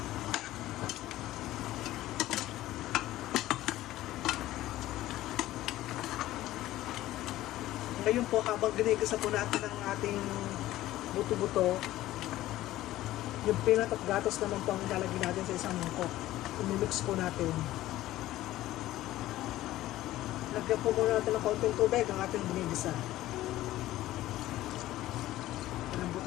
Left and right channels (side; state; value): right; quieter; 15.4 dB